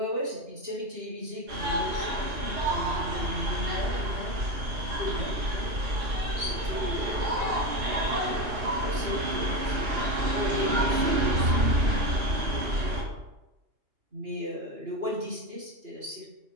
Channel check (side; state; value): left; late; 2.8 ms